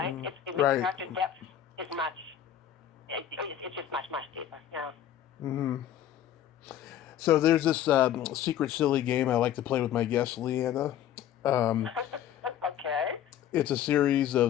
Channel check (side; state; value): right; quieter; 10.6 dB